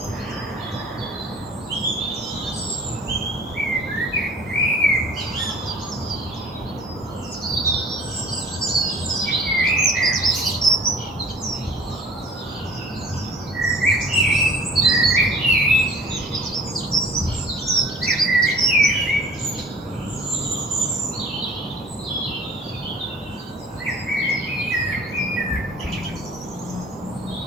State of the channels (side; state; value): both; normal; correlation 0.48